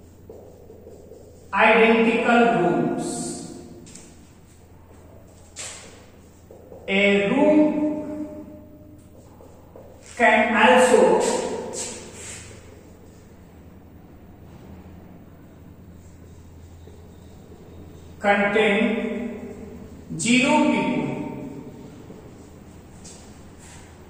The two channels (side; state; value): both; identical; correlation 1.00